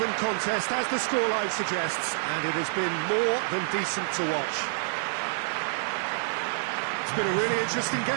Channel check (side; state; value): left; silent; 60 dB below the other